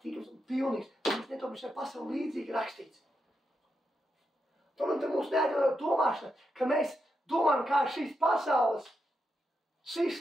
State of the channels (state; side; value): normal; both; correlation 0.84